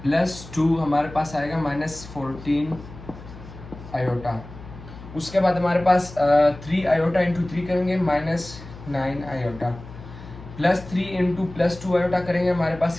+2 हमारे पास आएगा -14 आयोटा। उसके बाद हमारे पास 3 आयोटा इंटू 3 करेंगे -9 आयोटा, +3 इंटू +2 आयोटा करेंगे हमारे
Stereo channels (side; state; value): left; noise; hum, 16 dB below the sound